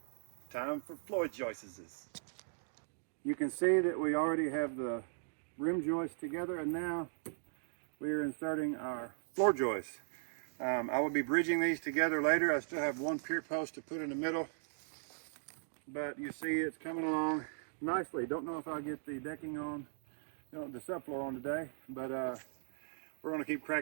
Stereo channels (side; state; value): left; silent; digital silence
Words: time for floor joists. You can see that we already have the rim joist together, and now we are inserting our floor joists. I will be bridging these together later. I still have one pier post to put in the middle, but you see it's coming along nicely. Don't know if I'll get the decking on, the subfloor on today, but we're going to keep